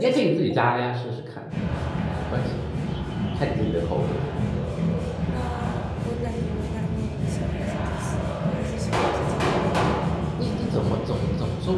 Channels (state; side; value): identical; both; correlation 1.00